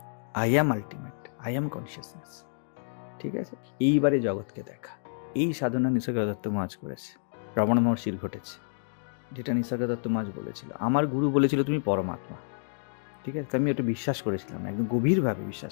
I am ultimate, I am consciousness. ঠিক আছে, এইবারে জগৎকে দেখা। এই সাধনা নিসর্গ দত্ত মহারাজ করেছে, রমণ মহর্ষির ঘটেছে, যেটা নিসর্গ দত্ত মহারাজ বলেছিল। আমার গুরু বলেছিল তুমি পরমাত্মা। ঠিক আছে, আমি ওটা বিশ্বাস করেছিলাম, একদম গভীরভাবে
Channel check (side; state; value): right; silent; digital silence